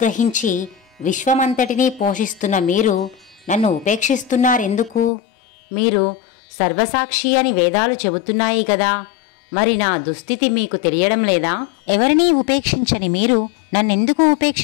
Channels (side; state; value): right; drops out; at 5.1 s